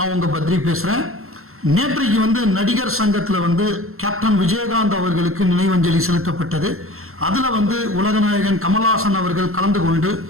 உங்க பத்ரி பேசுறேன். நேற்றைக்கு நடிகர் சங்கத்தில் கேப்டன் விஜயகாந்த் அவர்களுக்கு நினைவஞ்சலி செலுத்தப்பட்டது. அதில் உலகநாயகன் கமல்ஹாசன் அவர்கள் கலந்து கொண்டு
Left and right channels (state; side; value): late; left; 0.62 ms